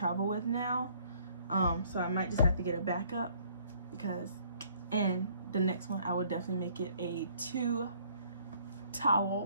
with now, so I might just have to get a backup because, and the next one I will definitely make it a 2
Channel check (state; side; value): inverted; both; correlation -0.61